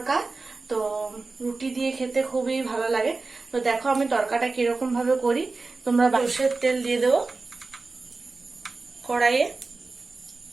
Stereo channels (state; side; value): quieter; left; 3.8 dB